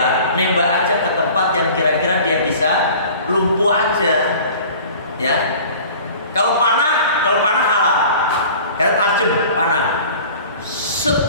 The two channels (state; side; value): inverted; both; correlation -0.44